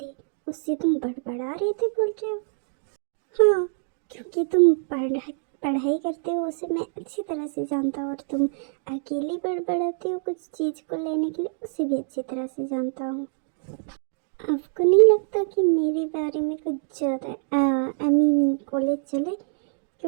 उससे तुम बड़बड़ा रही थी बोल रहे हो। हाँ, क्योंकि तुम पढ़ाई करते हो उसे मैं अच्छी तरह से जानता हूँ, और तुम अकेले बड़बड़ाते हो कुछ चीज को लेने के लिए, उसे भी अच्छी तरह से जानता हूँ। आपको नहीं लगता कि मेरे बारे में कुछ ज़्यादा आई मीन कॉलेज चले,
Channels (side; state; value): left; silent; digital silence